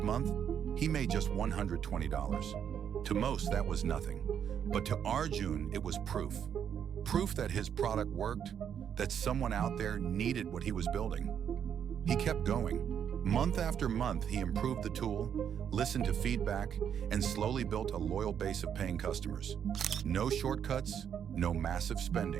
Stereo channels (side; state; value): left; quieter; 8.5 dB